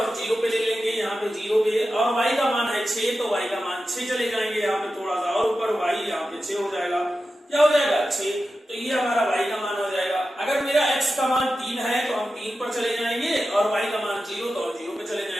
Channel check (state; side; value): normal; both; correlation 0.92